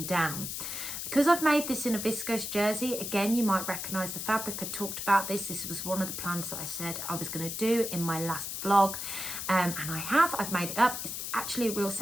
down. Because I've made this in a viscose jersey, again, you might recognise the fabric. I talked about this. This was one of the plans that I said I was going to do in my last vlog, and I've made it up. It's actually a real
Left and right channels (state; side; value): noise; left; hiss, 5 dB below the sound